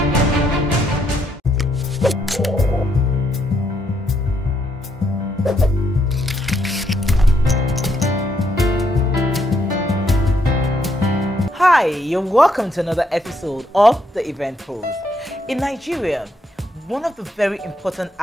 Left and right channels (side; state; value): both; normal; correlation 0.75